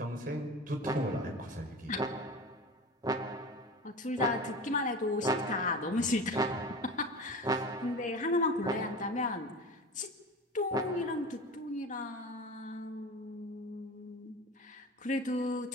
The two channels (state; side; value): normal; both; correlation 0.32